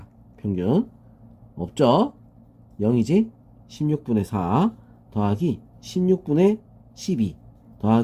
평균. 없죠? 0이지? 16분의 4 더하기 16분의 12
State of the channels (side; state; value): both; identical; correlation 1.00